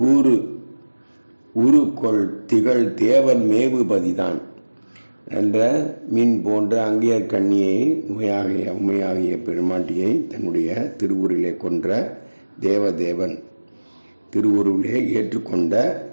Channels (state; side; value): inverted; both; correlation -1.00